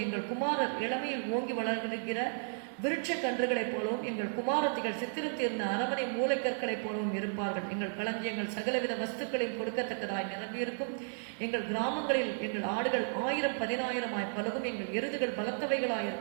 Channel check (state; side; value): silent; left; digital silence